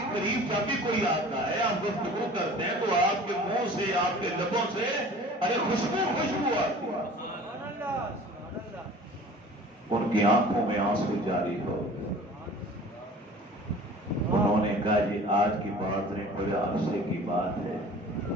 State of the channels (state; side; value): normal; both; correlation 0.44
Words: قریب جب بھی کوئی آتا ہے، آپ گفتگو کرتے ہیں تو آپ کے منہ سے، آپ کے لبوں سے ارے خوشبو خوشبو آتی ہے۔ ان کی آنکھوں میں آنسو جاری ہو گئے، انہوں نے کہا جی آج کی بات نہیں، بڑے عرصے کی بات ہے،